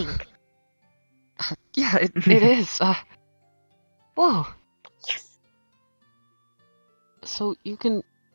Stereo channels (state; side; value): inverted; both; correlation -1.00